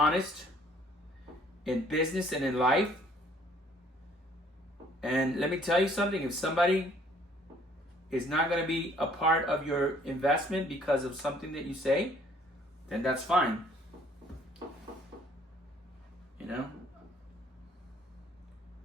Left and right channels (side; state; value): both; normal; correlation 0.59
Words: in business and in life. And let me tell you something. If somebody is not going to be a part of your investment because of something that you say, then that's fine. You know?